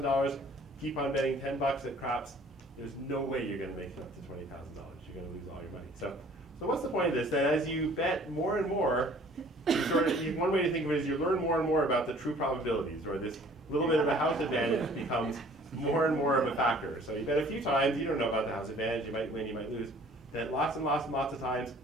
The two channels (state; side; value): normal; both; correlation 0.53